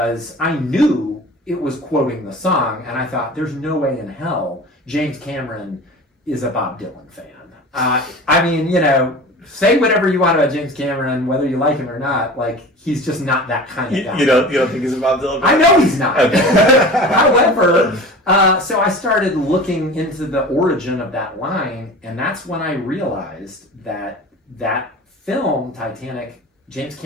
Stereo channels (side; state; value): both; normal; correlation 0.37